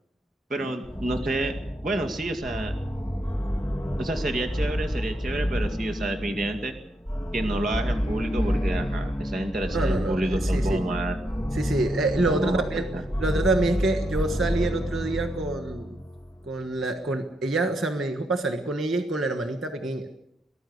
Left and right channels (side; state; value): both; normal; correlation 0.80